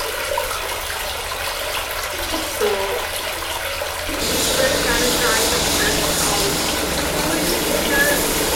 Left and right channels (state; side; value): identical; both; correlation 1.00